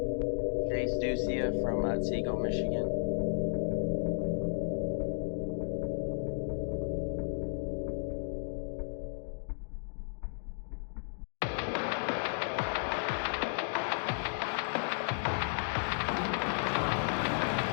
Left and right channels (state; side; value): silent; right; digital silence